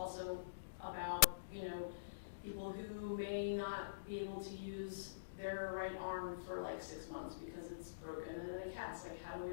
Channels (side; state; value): right; quieter; 22.3 dB